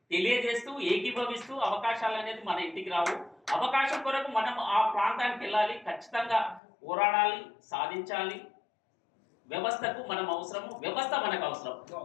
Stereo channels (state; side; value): drops out; right; at 6.6 s